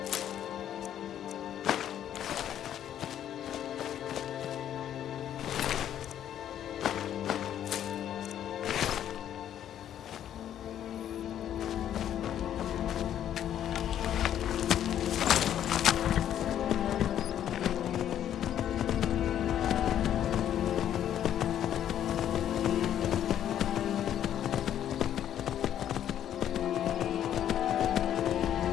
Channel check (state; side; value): quieter; right; 10.6 dB